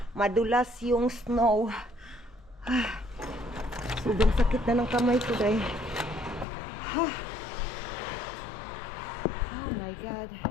Madulas yung snow. Sobrang sakit na ng kamay ko, day. Oh my God.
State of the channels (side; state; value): right; drops out; at 6.5 s